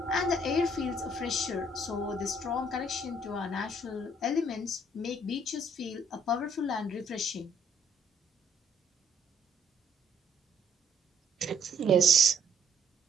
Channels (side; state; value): both; normal; correlation 0.65